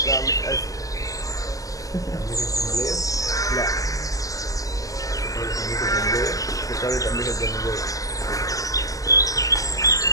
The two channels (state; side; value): late; right; 0.17 ms